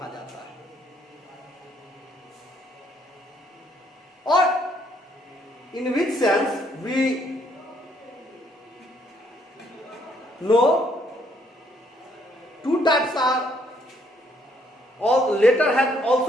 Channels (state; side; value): normal; both; correlation 0.69